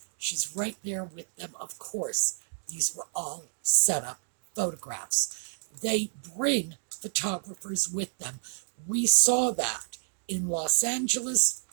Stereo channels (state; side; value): silent; left; digital silence